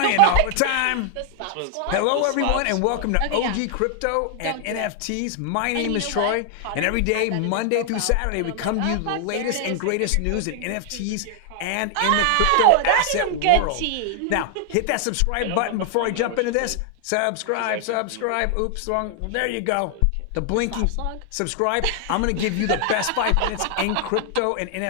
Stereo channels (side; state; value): both; different; correlation 0.00